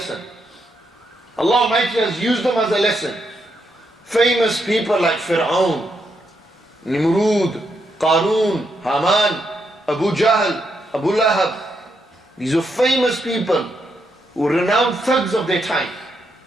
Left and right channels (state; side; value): normal; both; correlation 0.80